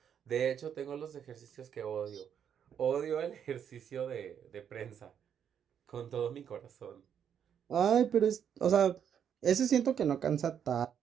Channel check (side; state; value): left; quieter; 8.4 dB